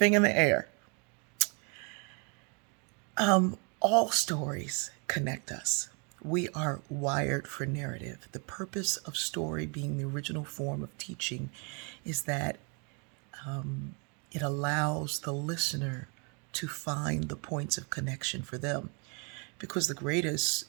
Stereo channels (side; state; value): left; quieter; 35.0 dB